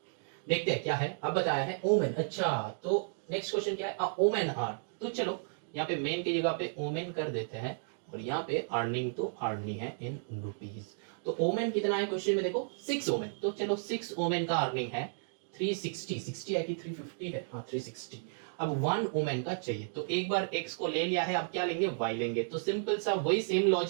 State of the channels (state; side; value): silent; left; digital silence